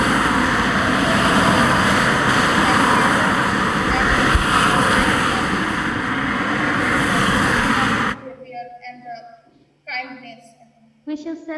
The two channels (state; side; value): identical; both; correlation 1.00